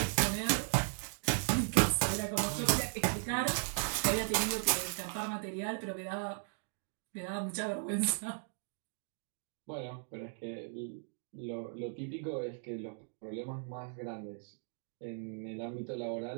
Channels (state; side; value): silent; left; 53 dB below the other